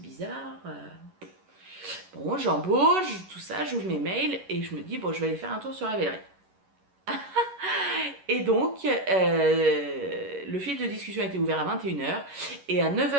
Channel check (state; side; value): late; left; 11 ms